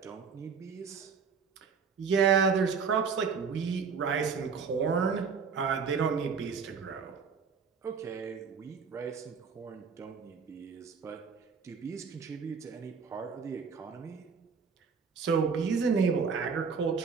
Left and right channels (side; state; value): left; quieter; 5.8 dB